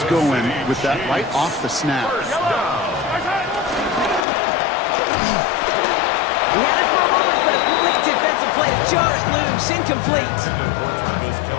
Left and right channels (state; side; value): drops out; right; at 4.2 s